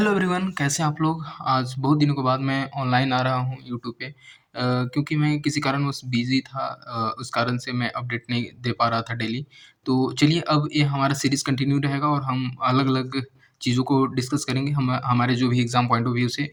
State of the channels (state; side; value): identical; both; correlation 1.00